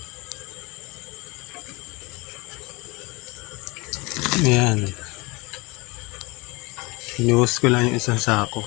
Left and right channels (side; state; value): right; quieter; 25.3 dB